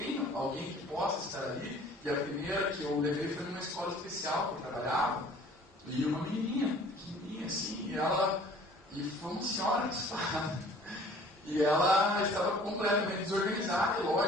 alguém que possa estar ali, e a primeira que eu levei foi numa escola especial que eu trabalhava, e uma menininha, pequenininha assim, e foi uma senhora cuspada. E ela estava completamente desorganizada, e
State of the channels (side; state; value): both; normal; correlation 0.51